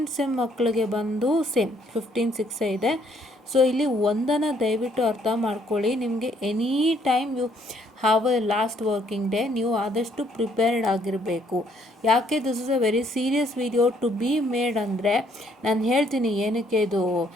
sem ಮಕ್ಕಳಿಗೆ ಬಂದು ಸೇಮ್ 15/6 ಇದೆ. ಸೊ ಇಲ್ಲಿ ಒಂದನ್ನು ದಯವಿಟ್ಟು ಅರ್ಥ ಮಾಡ್ಕೊಳ್ಳಿ, ನಿಮಗೆ any time you have a last working day, ನೀವು ಆದಷ್ಟು ಪ್ರಿಪೇರ್ಡ್ ಆಗಿರಬೇಕು. ಯಾಕೆ this is a very serious video to be made ಅಂದರೆ, ನಾನು ಹೇಳ್ತೀನಿ ಏನಕ್ಕೆ ಇದು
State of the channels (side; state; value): both; normal; correlation 0.67